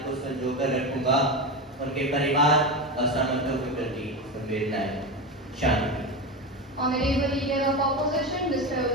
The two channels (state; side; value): normal; both; correlation 0.19